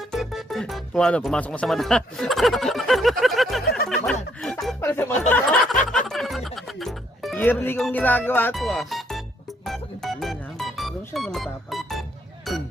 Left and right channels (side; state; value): both; normal; correlation 0.70